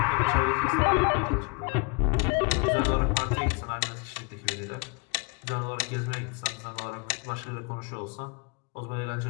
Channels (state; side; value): quieter; right; 32.0 dB